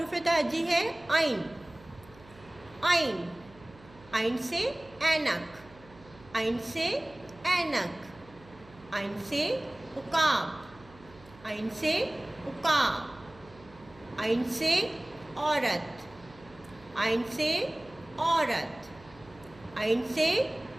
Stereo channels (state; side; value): noise; right; hum, 23 dB below the sound